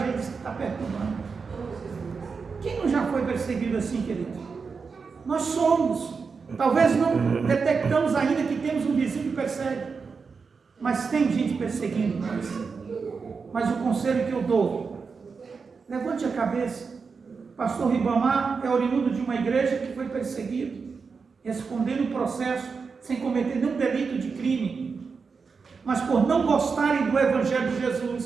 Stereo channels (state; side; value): quieter; left; 5.1 dB